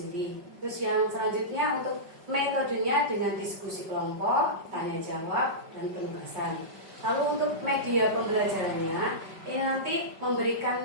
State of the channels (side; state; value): left; late; 5.4 ms